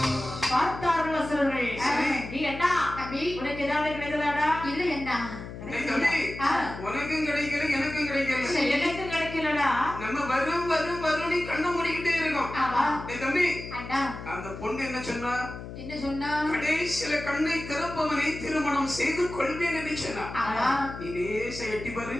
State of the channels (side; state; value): left; noise; hum, 11 dB below the sound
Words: பார்த்தார்கள் அசுரர்கள். நீ என்ன உனக்கு ஏதாவது கிடைத்ததாடா? இல்ல என்ன உனக்கும் கிடைக்கல எனக்கும் கிடைக்கல. எனக்கும் கிடைக்கலடா. நம்ம வரும் வரும் வரும் கண்ணை மூடிக்கிட்டே இருக்கோம். தம்பி அந்த பொண்ணு என்ன சொன்னா? என்ன சொன்னா? கடைசியில கண்ணை திறப்பவனை திருமணம் செய்து கொள்வேன் என்று சொன்னா. நீ லேச எட்டி பாரு.